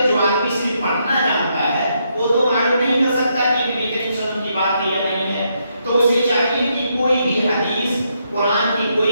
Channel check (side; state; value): both; inverted; correlation -0.78